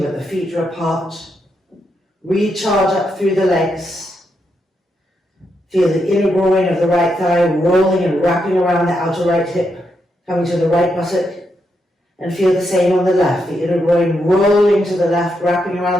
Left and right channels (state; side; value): normal; both; correlation 0.82